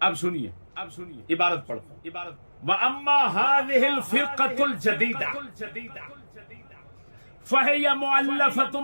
اب سنیے عبارت پڑھتا ہوں۔ وَأَمَّا هَذِهِ الْفِرْقَةُ الْجَدِيدَةُ فَهِيَ مُؤَلَّفَةٌ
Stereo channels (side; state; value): both; inverted; correlation -1.00